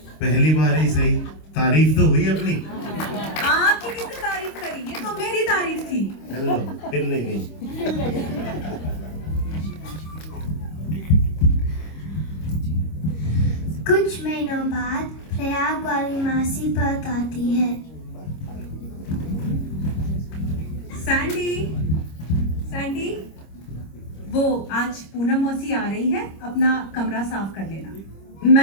पहली बार ही सही, तारीफ तो हुई अपनी। आपकी किसने तारीफ करी? ये तो मेरी तारीफ थी। हेलो, फिर ले गई। कुछ महीनों बाद प्रयाग वाली मासी परत आती है। सैंडी, सैंडी, वो आज पूनम मौसी आ रही है, अपना कमरा साफ कर लेना।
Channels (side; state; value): right; late; 26 ms